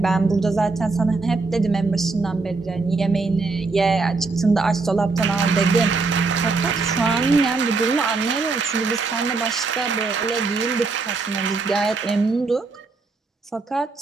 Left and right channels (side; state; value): left; quieter; 4.0 dB